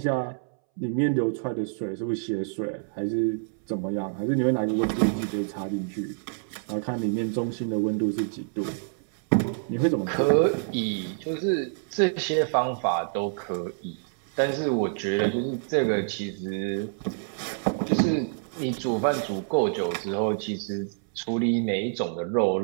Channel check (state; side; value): silent; left; 60 dB below the other